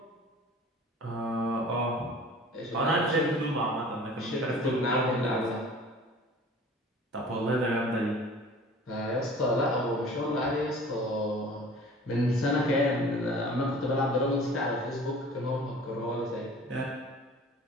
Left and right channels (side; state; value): both; normal; correlation 0.45